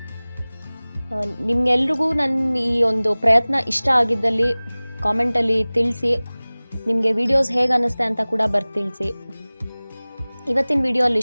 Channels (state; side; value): inverted; both; correlation -1.00